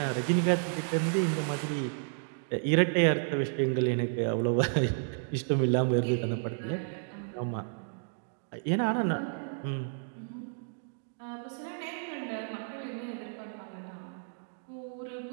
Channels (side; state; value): left; silent; digital silence